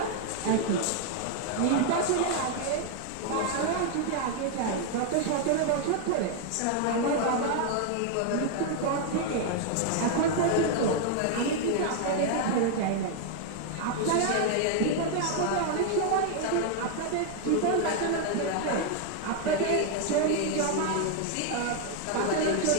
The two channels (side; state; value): both; different; correlation 0.00